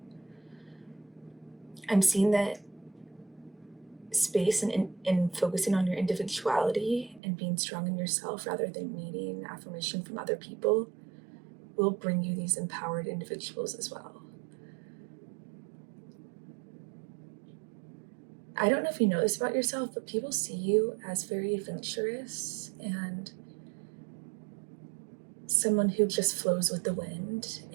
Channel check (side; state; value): left; drops out; at 7.2 s